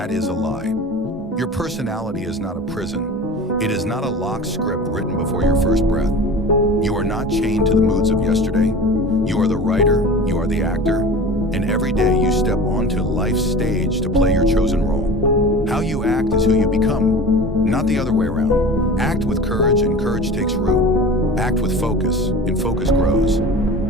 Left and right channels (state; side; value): normal; both; correlation 0.36